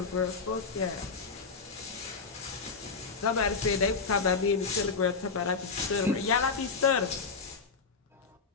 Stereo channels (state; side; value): quieter; right; 4.9 dB